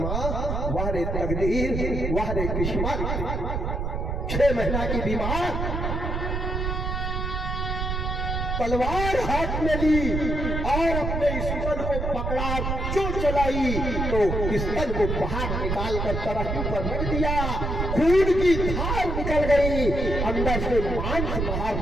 वाह रे तकदीर, वाह रे किस्मत। 6 महीना की बीमार, तलवार हाथ में ली और अपने स्तन को पकड़ा, जो चलाई तो स्तन को बाहर निकाल कर तरफ पर रख दिया। खून की धार निकल गई, अंदर से मांस बाहर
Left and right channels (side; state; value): right; noise; rumble, 2 dB below the sound